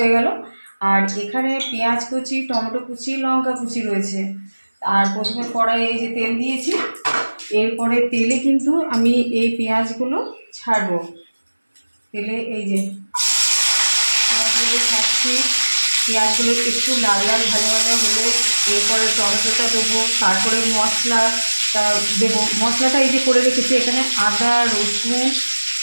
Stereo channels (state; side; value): inverted; both; correlation -1.00